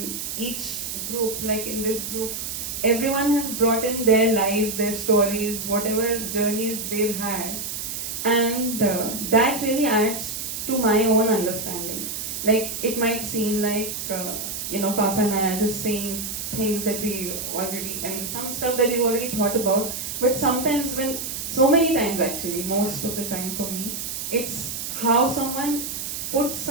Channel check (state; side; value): noise; right; hiss, 5 dB below the sound